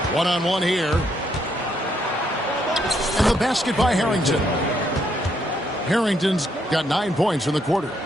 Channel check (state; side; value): normal; both; correlation 0.74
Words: One-on-one here. And the basket by Harrington. Harrington's got 9 points in the quarter.